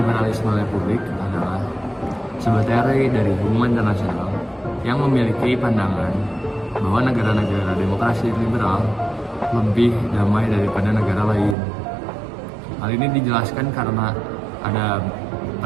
republik adalah sebuah teori dari hubungan internasional yang memiliki pandangan bahwa negara-negara demokrasi liberal lebih damai daripada negara lain. Hal ini dijelaskan karena ada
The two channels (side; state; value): left; drops out; at 11.6 s